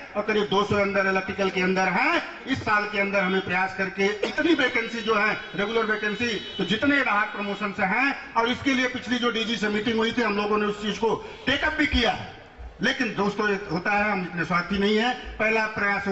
और करीब 200 अंदर इलेक्ट्रिकल के अंदर है। इस साल के अंदर हमें प्रयास करके इतनी वैकेंसी जो है, रेगुलर वैकेंसी, तो जितने राहत प्रमोशन से हैं, और इसके लिए पिछली जो डीजी से मीटिंग हुई थी, हम लोगों ने उस चीज को टेकअप भी किया है। लेकिन दोस्तों, होता है, हम इतने स्वार्थी नहीं है। पहला प्रयास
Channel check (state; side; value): identical; both; correlation 1.00